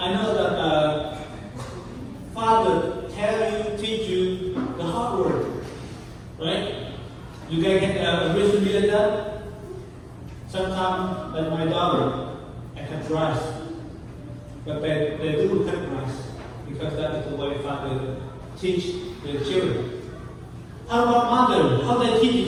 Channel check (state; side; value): identical; both; correlation 1.00